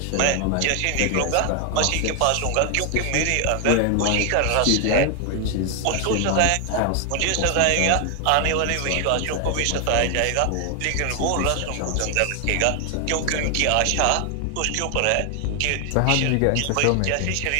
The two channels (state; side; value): different; both; correlation 0.00